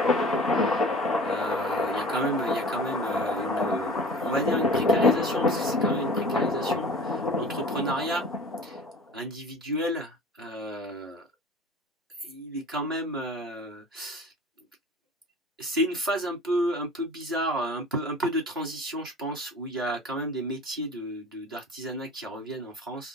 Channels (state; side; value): normal; both; correlation 0.41